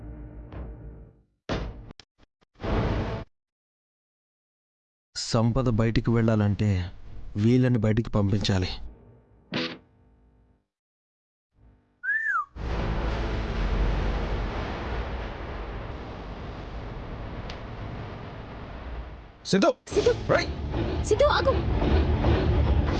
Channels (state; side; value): identical; both; correlation 1.00